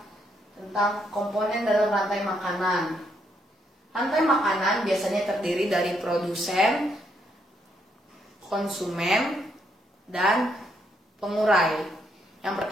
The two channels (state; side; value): normal; both; correlation 0.75